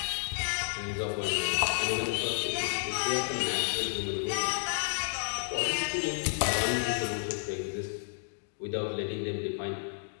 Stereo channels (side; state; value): right; silent; digital silence